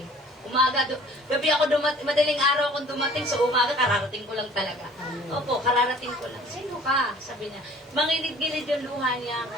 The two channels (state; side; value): normal; both; correlation 0.51